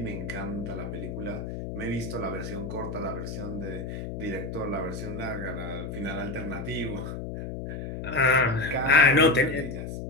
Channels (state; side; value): noise; left; hum, 6 dB below the sound